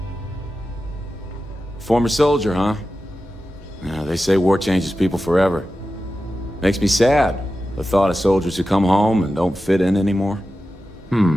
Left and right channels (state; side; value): normal; both; correlation 0.93